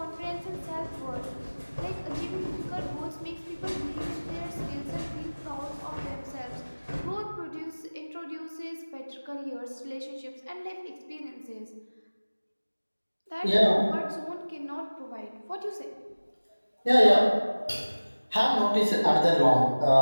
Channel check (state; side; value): inverted; both; correlation -1.00